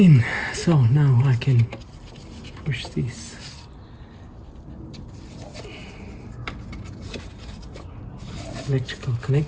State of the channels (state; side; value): identical; both; correlation 1.00